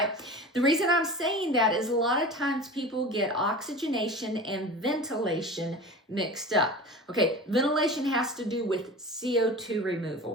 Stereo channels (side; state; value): both; normal; correlation 0.34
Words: The reason I'm saying that is a lot of times people get oxygenation and ventilation mixed up. Okay, ventilation has to do with CO2